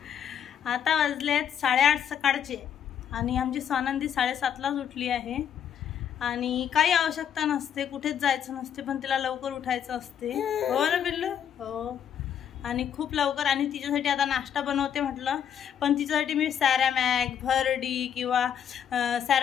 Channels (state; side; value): quieter; right; 8.9 dB